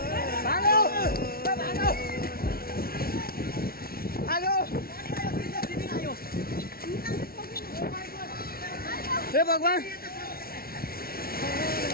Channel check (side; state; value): right; late; 0.44 ms